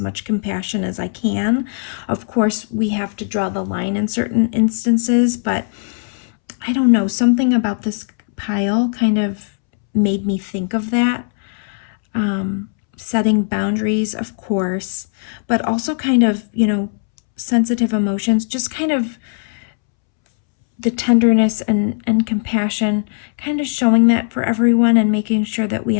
much compassion as I can. Of course, we have to draw the line in certain instances, but I don't know, something about this pile kind of made me think of that. Setting boundaries, of course, but also kind of, sensitive emotions, just kind of the tenderness and compassion, kind of showing that for everyone and making sure that we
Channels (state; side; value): silent; right; 67 dB below the other